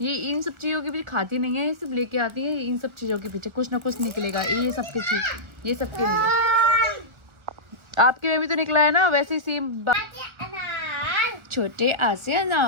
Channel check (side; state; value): left; late; 1.4 ms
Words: ये इन सब चीज़ों के पीछे खाती नहीं है, ये सिर्फ लेके आती है। इन सब चीज़ों के पीछे कुछ ना कुछ निकलेगा, ये सबके चीज, ये सबके लिए। आपके में भी तो निकला है ना, वैसे ही सेम। छोटे आसे